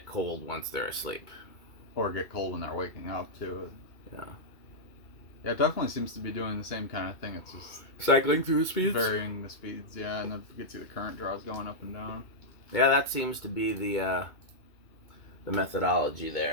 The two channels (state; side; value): late; right; 2.2 ms